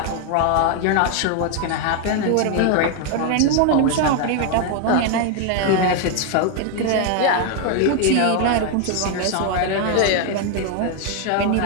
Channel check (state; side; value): different; both; correlation 0.01